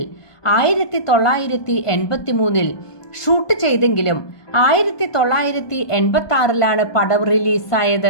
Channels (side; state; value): right; late; 1.2 ms